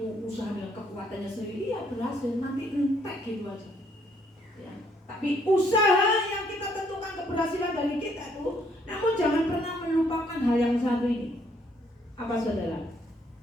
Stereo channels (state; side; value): normal; both; correlation 0.68